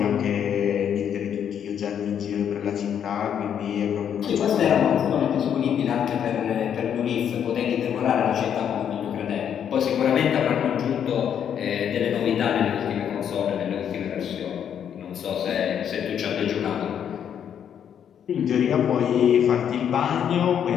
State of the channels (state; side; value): quieter; right; 8.7 dB